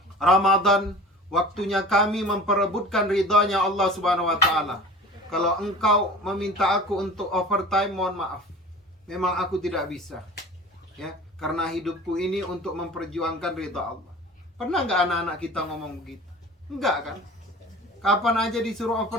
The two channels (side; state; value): both; normal; correlation 0.39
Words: Ramadan waktunya kami memperebutkan ridhonya Allah Subhanahu wa taala. Kalau engkau meminta aku untuk overtime, mohon maaf. Memang aku tidak bisa. Ya, karena hidupku ini untuk memperjuangkan ridha Allah." Pernah nggak anak-anak kita ngomong begitu? Enggak kan? Kapan aja disuruh